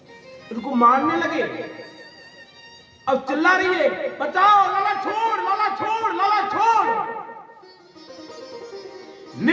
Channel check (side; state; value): both; identical; correlation 1.00